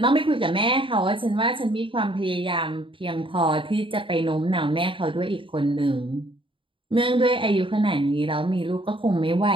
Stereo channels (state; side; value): late; left; 0.25 ms